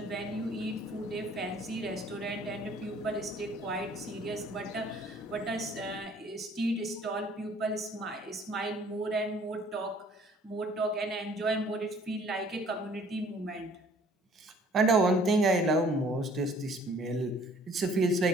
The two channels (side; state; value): both; normal; correlation 0.56